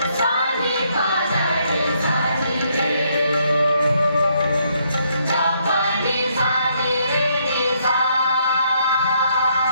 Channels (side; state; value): both; inverted; correlation -0.72